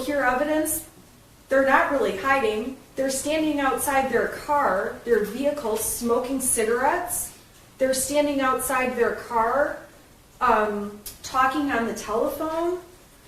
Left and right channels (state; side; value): identical; both; correlation 1.00